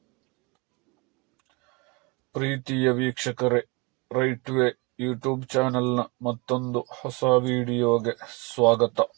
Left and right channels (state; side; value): quieter; left; 28.3 dB